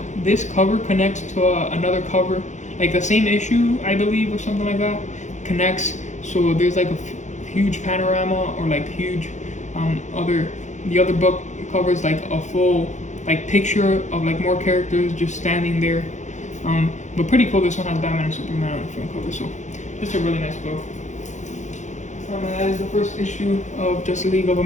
cover connects to another cover, like the same issue, I believe, or something like that, connects. So there's like a huge panorama, or like huge the other book covers like a full like picture of like more characters just standing there. But pretty cool. This one has Batman and Superman on the front cover, so just a really nice book. And that is the first issue of Justice League of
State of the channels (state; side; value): late; right; 0.35 ms